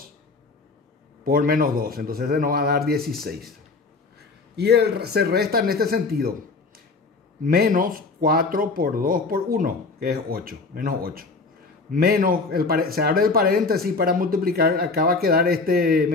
por menos 2. Entonces se nos va a dar 16. Y se resta en este sentido. Menos 4 por 2 por 1, que es 8. Menos 8. Menos, se abre el paréntesis para multiplicar. Acá va a quedar este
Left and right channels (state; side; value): quieter; right; 3.9 dB